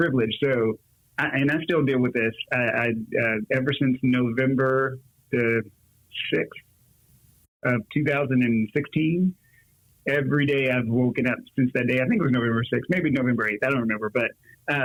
So, I still deal with this. Ever since November the 6th of 2016, every day I've woken up since that day. I think it was November 6th, maybe November 8th. I don't remember, but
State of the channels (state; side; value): identical; both; correlation 1.00